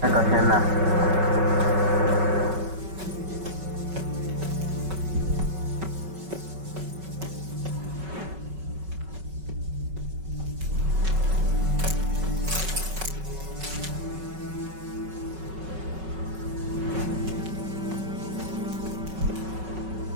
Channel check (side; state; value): left; late; 5.3 ms